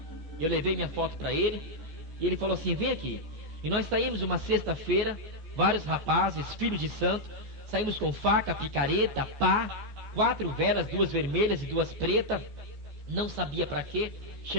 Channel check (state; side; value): late; left; 14 ms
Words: Eu levei minha foto para ele e ele falou assim: vem aqui. E nós saímos uma sexta-feira, vários rapazes, filhos de santo, Saímos com faca, picareta, pá, 4 velas, 2 vermelhas e 2 pretas. Não sabia para quê.